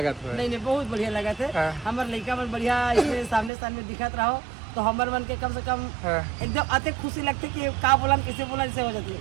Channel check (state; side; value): drops out; left; at 3.5 s